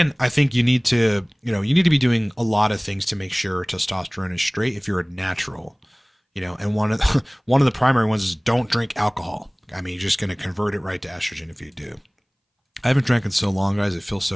I think you need to be doing a lot of things to make sure testosterone is straight if you're a natural, and one of the primary ones is don't drink alcohol. I mean, you're just going to convert it right to estrogen if you do. I haven't drank in so long, guys. It feels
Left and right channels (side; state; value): both; identical; correlation 1.00